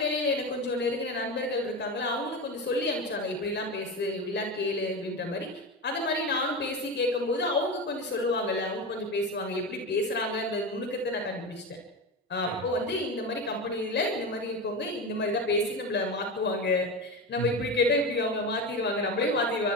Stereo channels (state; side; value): normal; both; correlation 0.22